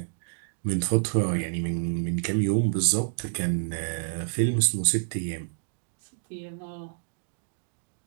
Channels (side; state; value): left; silent; digital silence